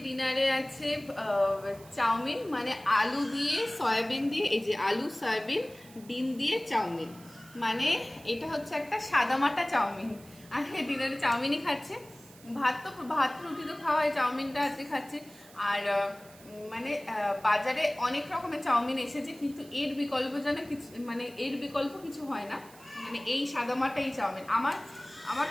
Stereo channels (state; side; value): noise; right; hiss, 22 dB below the sound